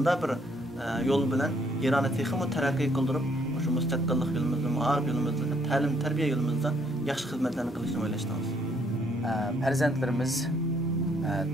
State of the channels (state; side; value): normal; both; correlation 0.69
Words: bir yo'l bilan Ironni texmi taraqqiy qildirib, shu mustaqillik yo'limizda, ma'arif yo'limizda, ta'lim, tarbiya yo'limizda yaxshi xizmatlarni qilishni o'ylashdingiz? Farzandlarimiz